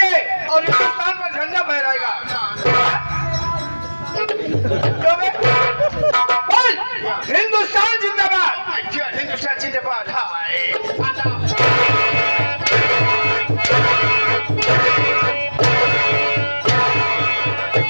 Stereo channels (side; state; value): both; inverted; correlation -1.00